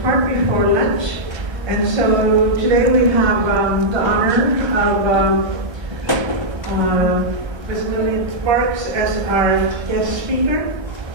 part before lunch. And so today we have the honor of Ms. Lilian Sparks as our guest speaker.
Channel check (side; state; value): left; late; 1.3 ms